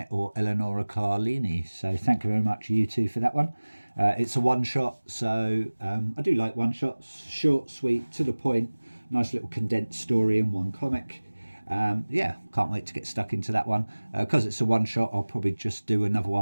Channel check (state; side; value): inverted; both; correlation -1.00